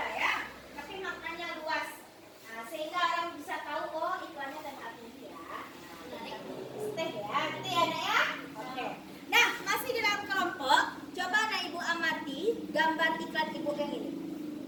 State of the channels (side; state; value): both; identical; correlation 1.00